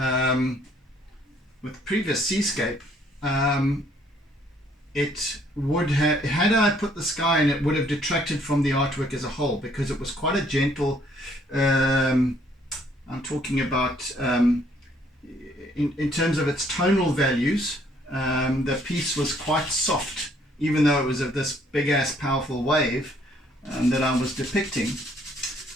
with the previous seascape, it would have, had I put the sky in, it would have detracted from the artwork as a whole, because it was quite a gentle, I'm talking about in terms of its tonal values, the piece was quite soft, even though it was of this big ass powerful wave that I was depicting.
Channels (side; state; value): both; normal; correlation 0.64